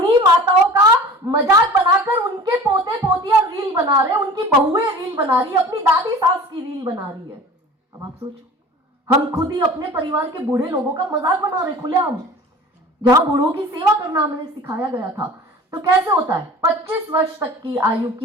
माताओं का मजाक बनाकर उनके पोते पोतियां रील बना रहे हैं, उनकी बहुएं रील बना रही है, अपनी दादी सास की रील बना रही है। अब आप सोचो, हम खुद ही अपने परिवार के बूढ़े लोगों का मजाक बना रहे खुलेआम, जहां बूढ़ों की सेवा करना हमें सिखाया गया था। तो कैसे होता है? 25 वर्ष तक की आयु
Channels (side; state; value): both; normal; correlation 0.41